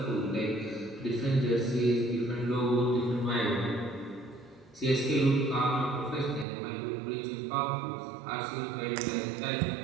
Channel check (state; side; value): drops out; left; at 6.5 s